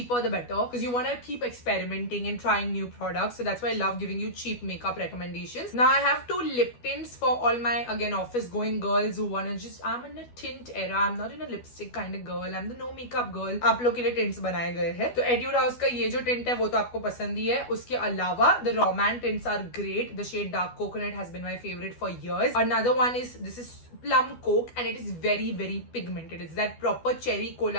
the better because you want to keep experimenting and trying new products. So that's why I love giving you cheap makeup recommendations. Now I have 2 lip tints for all my, again, office going girls who want to just, I'm in a tint era. I'm not in a lipstick kind of girl. I'm the no makeup girl. आप लोग के लिए tints बनाए गए हैं. तो Etude House का ये जो tint है वो तो आपको पसंद ही है. उसके अलावा the Roman tints are great. The shade Dark Coconut has been my favorite for years. Another one is, this is Plum Coke and it is very very pigmented. It's that proper cherry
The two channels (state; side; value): late; right; 12 ms